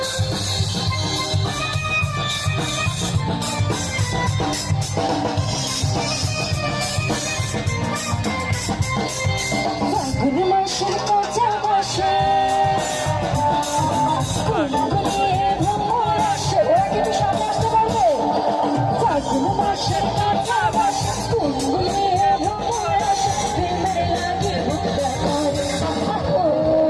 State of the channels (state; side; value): identical; both; correlation 1.00